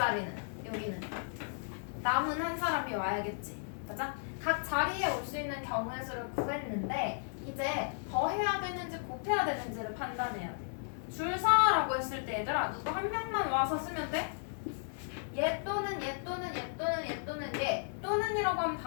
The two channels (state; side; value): silent; right; digital silence